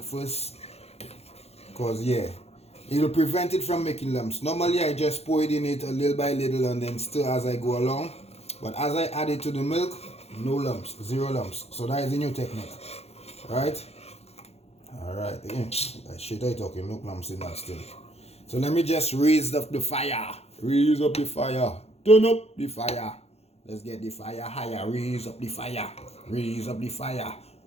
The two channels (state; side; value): late; right; 0.30 ms